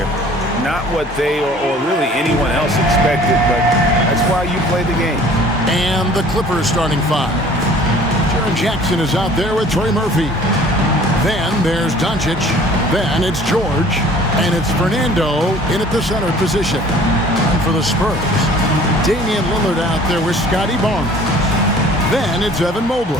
Not what they or really anyone else expected, but that's why you play the game. And the Clippers starting five. Jaren Jackson is out there with Trey Murphy. Then there's Doncic. Then it's George. And it's Fernando in at the center position. And for the Spurs, Damian Lillard out there with Scotty Barnes. Then it's Evan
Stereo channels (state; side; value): normal; both; correlation 0.50